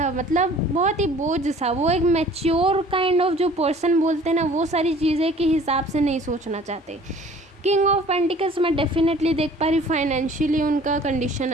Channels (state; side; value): normal; both; correlation 0.50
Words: मतलब बहुत ही बोझ सा। वो एक मैच्योर काइंड ऑफ जो पर्सन बोलते हैं ना, वो सारी चीज़ें के हिसाब से नहीं सोचना चाहते। किंग ऑफ पेंटिकल्स मैं डेफिनेटली देख पा रही हूँ, फाइनेंशियली उनका कंडीशन